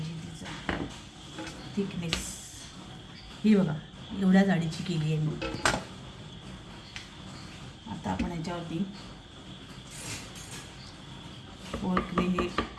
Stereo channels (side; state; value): both; identical; correlation 1.00